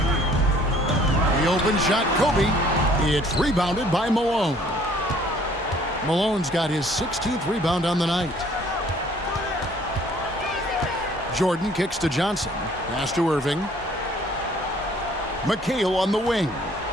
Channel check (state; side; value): normal; both; correlation 0.58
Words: The open shot, Kobe. It's rebounded by Malone. Malone's got his 16th rebound on the night. Jordan kicks to Johnson. Pass to Irving. McHale on the wing.